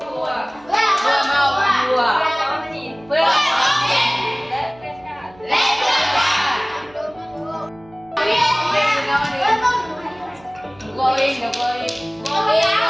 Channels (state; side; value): noise; right; hum, 26 dB below the sound